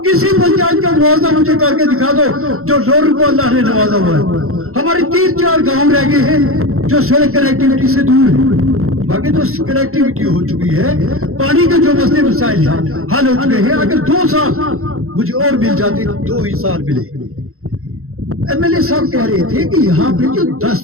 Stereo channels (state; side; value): late; left; 0.63 ms